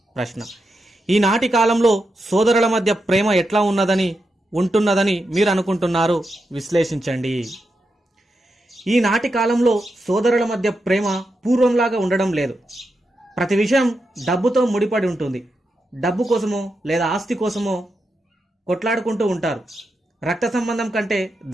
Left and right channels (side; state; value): both; normal; correlation 0.86